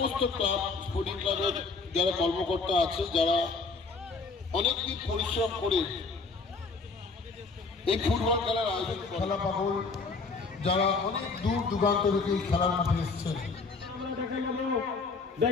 ক্লাব স্পোর্টিং ক্লাবের যারা কর্মকর্তা আছে, যারা অনেকদিন পরিশ্রম করে এই ফুটবল খেলার আয়োজন। খেলা পাগল যারা অনেক দূর দূরান্ত থেকে এই খেলার মাঠে এসেছেন। আমরা দেখে নেব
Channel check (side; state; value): right; quieter; 4.2 dB